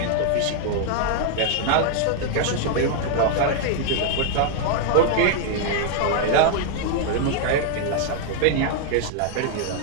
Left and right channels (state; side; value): different; both; correlation 0.00